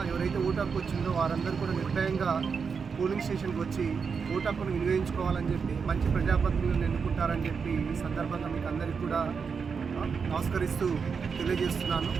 ఎవరైతే ఓటు హక్కు వచ్చిందో వారందరూ కూడా నిర్భయంగా పోలింగ్ స్టేషన్కి వచ్చి ఓటు హక్కును వినియోగించుకోవాలని చెప్పి మంచి ప్రజాప్రతినిధులను ఎన్నుకుంటారని చెప్పి ఈ సందర్భంగా మీకు అందరికీ కూడా నమస్కరిస్తూ తెలియజేస్తున్నాను.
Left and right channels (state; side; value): quieter; left; 5.8 dB